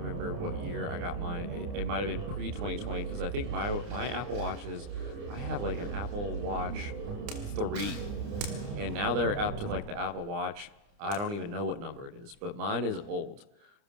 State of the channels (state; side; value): late; left; 29 ms